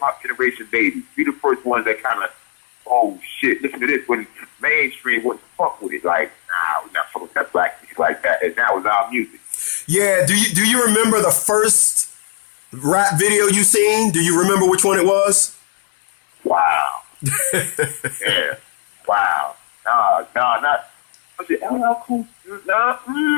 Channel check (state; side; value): silent; right; 56 dB below the other